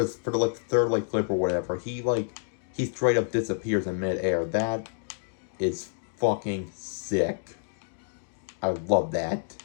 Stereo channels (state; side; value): silent; right; digital silence